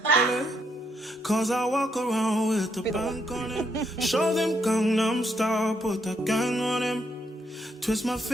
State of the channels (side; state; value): both; normal; correlation 0.75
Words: Cause I walk around with the bank on him. Show them Gangnam Style, put the gang on him. Twist my